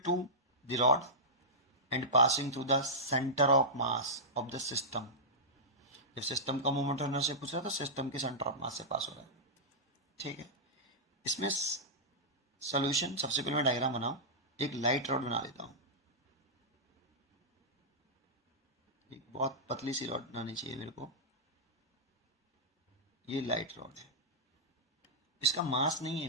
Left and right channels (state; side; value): normal; both; correlation -0.13